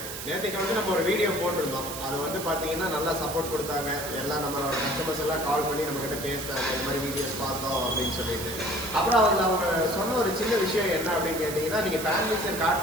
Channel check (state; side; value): noise; right; hiss, 8 dB below the sound